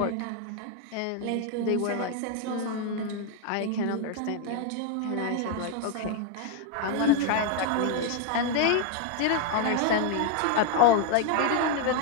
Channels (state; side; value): different; both; correlation 0.01